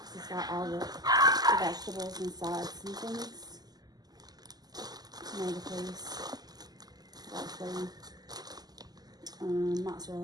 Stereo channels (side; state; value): left; late; 0.19 ms